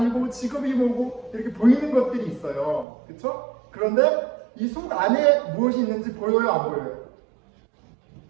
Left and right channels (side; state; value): left; drops out; at 2.9 s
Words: 직업이 뭐고 이렇게 보이는 것들이 있어요. 그렇죠? 그런데 이 속 안에 무엇이 있는지 보여요, 안 보여요?